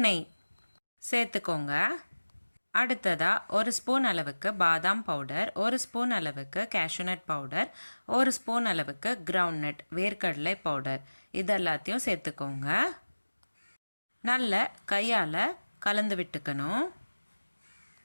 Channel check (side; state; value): both; inverted; correlation -1.00